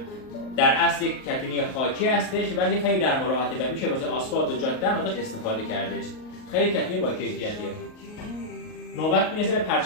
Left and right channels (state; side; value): late; right; 38 ms